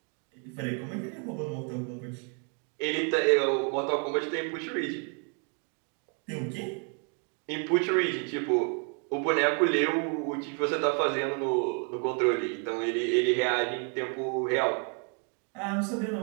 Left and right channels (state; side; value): quieter; left; 38.7 dB